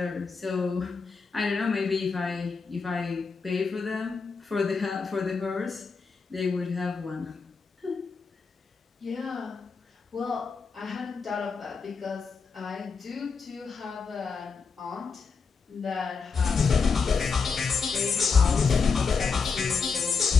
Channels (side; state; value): right; quieter; 5.1 dB